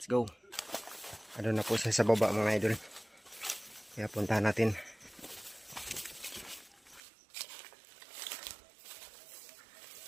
go. Ano na po siya sa baba mga idol. Kaya puntahan natin.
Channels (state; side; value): drops out; left; at 7.0 s